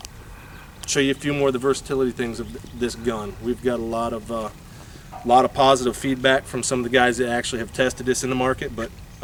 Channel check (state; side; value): identical; both; correlation 1.00